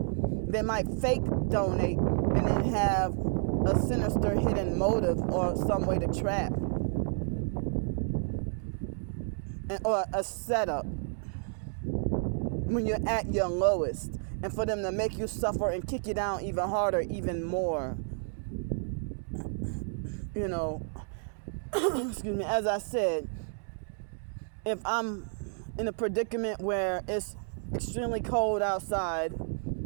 They might fake donate and then have a sinister hidden motive or some way to trap. Or a setup when you're at your lowest, and for them to make you suffer and kick you down even harder, even more. you know, excuse me, as I said, if I'm in a predicament where it's extremely cold outside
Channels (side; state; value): left; silent; 57 dB below the other